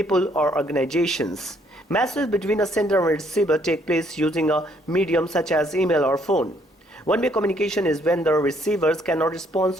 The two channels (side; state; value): both; normal; correlation 0.67